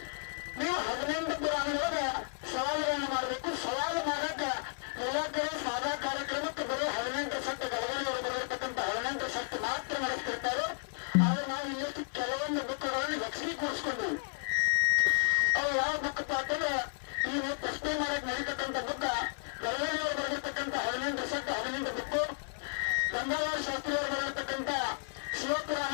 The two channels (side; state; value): right; silent; digital silence